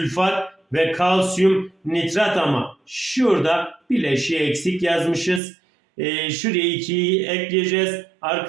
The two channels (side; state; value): left; drops out; at 5.4 s